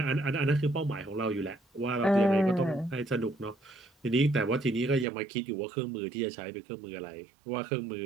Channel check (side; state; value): left; drops out; at 5.1 s